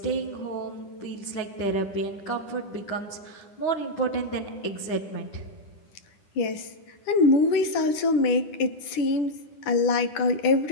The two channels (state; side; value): late; right; 10 ms